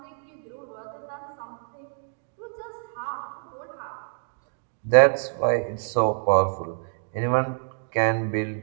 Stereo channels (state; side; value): silent; left; digital silence